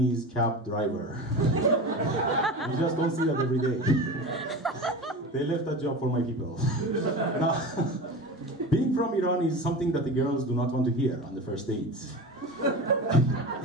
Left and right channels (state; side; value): normal; both; correlation 0.29